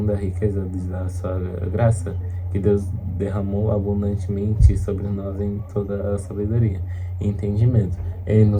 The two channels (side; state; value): both; identical; correlation 1.00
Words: a riqueza da sua graça, que Deus derramou abundantemente sobre nós em toda a sabedoria e entendimento. Ele